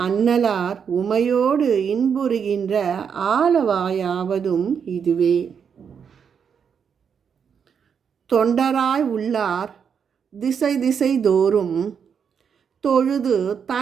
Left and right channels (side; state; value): left; quieter; 7.0 dB